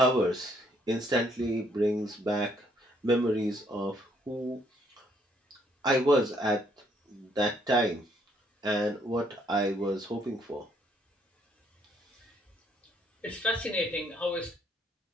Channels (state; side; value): normal; both; correlation 0.68